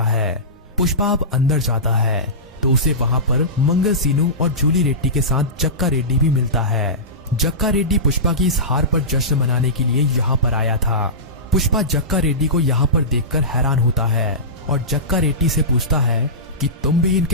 है। पुष्पा अब अंदर जाता है तो उसे वहां पर मंगल सीनू और जूली रेड्डी के साथ जक्का रेड्डी भी मिलता है। जक्का रेड्डी पुष्पा की इस हार पर जश्न मनाने के लिए यहाँ पर आया था। पुष्पा जक्का रेड्डी को यहाँ पर देखकर हैरान होता है और जक्का रेड्डी से पूछता है कि तुम भी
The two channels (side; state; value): both; normal; correlation -0.19